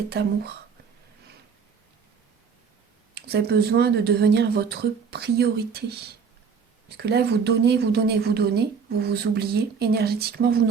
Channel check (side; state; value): left; quieter; 6.0 dB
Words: amour. Vous avez besoin de devenir votre priorité. Parce que là, vous donnez, vous donnez, vous donnez. Vous vous oubliez. Énergétiquement, vous ne